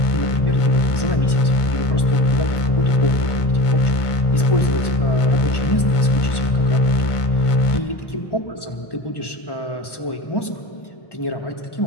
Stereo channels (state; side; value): late; right; 1.1 ms